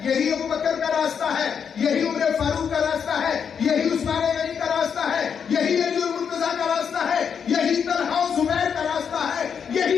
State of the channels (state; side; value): quieter; right; 7.1 dB